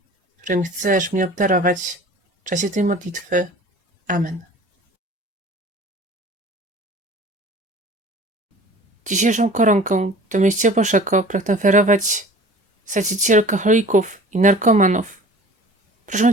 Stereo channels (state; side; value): normal; both; correlation 0.44